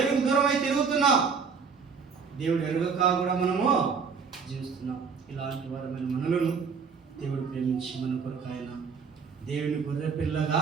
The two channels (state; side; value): quieter; left; 5.7 dB